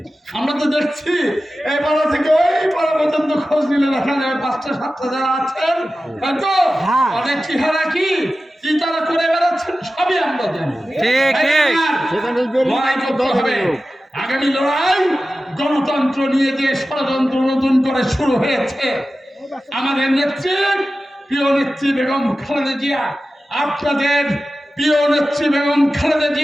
আমরা তো দেখছি এই পাড়া থেকে ওই পাড়া পর্যন্ত খোঁজ নিলে দেখা যাবে 5টা-7টা যারা আছেন, হয়তো অনেক চেহারা কি তারা করে বেড়াচ্ছেন, সবই আমরা জানি। লড়াই করতে হবে। আগামী লড়াই গণতন্ত্র নিয়ে যে ষড়যন্ত্র নতুন করে শুরু হয়েছে, আমাদের নেত্রী, প্রিয় নেত্রী বেগম খালেদা জিয়া, আপনাদের প্রিয় নেত্রী বেগম খালেদা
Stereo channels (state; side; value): normal; both; correlation 0.94